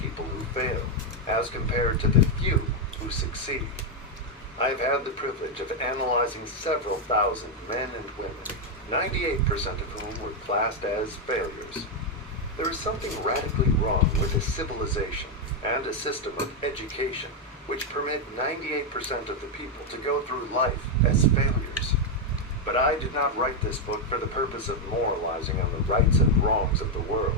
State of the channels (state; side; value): normal; both; correlation 0.02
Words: who fail, as compared to the few who succeed. I have had the privilege of analyzing several thousand men and women, 98% of whom were classed as failures. There is something radically wrong with a civilization and a system of education which permit 98% of the people to go through life as failures. But I did not write this book for the purpose of moralizing on the rights and wrongs of the